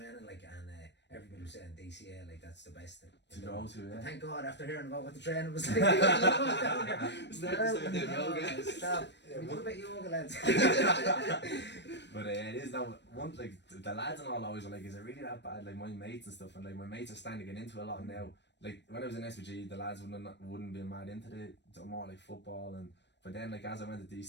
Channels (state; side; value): late; right; 0.51 ms